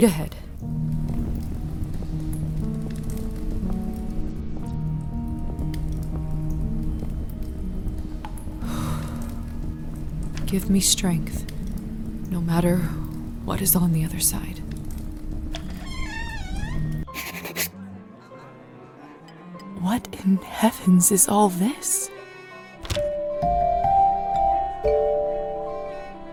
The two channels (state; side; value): identical; both; correlation 1.00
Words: ahead. Give me strength, no matter what is on the other side. What in heavens is all this?